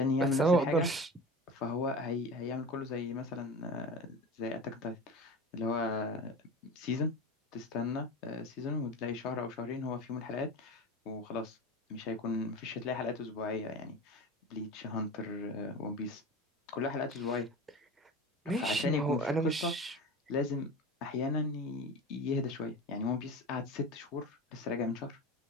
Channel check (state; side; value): normal; both; correlation 0.31